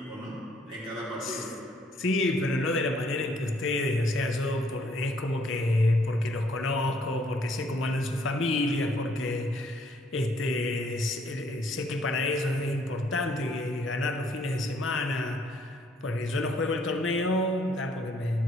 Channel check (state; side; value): normal; both; correlation 0.66